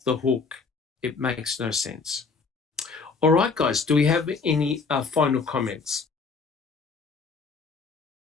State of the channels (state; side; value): quieter; right; 4.7 dB